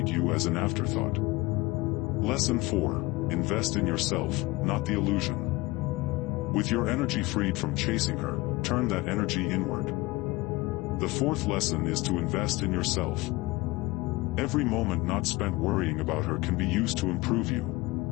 you as an afterthought. Lesson 4. Invest in yourself, not the illusion. With your energy freed from chasing her, turn that energy inward. The fourth lesson is to invest in yourself. Every moment not spent worrying about her can be used to improve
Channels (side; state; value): right; quieter; 21.4 dB